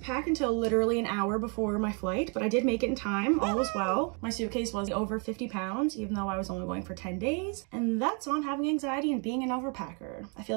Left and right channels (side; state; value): left; quieter; 36.6 dB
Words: until literally an hour before my flight, but I did make it in time. All was well. My suitcase was over 50 pounds, even though I was only going for 10 days. And that's on having anxiety and being an overpacker. I feel